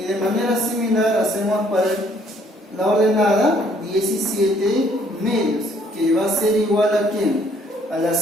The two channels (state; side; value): normal; both; correlation 0.63